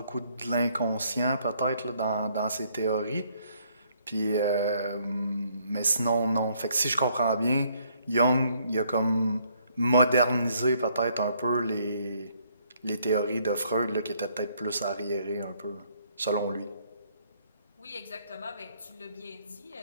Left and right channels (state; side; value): inverted; both; correlation -0.67